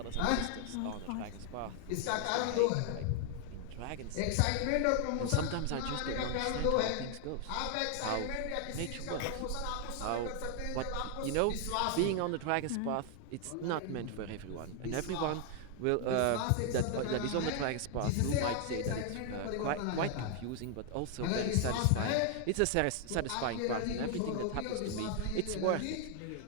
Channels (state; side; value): different; both; correlation 0.00